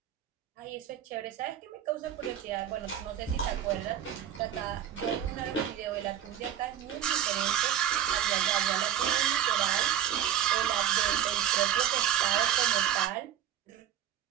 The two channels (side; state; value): left; quieter; 10.4 dB